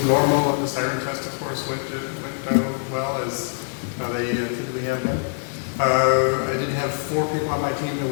normal, and the siren test, of course, went well, as they typically have been. I did have 4 people on my team that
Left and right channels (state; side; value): silent; right; digital silence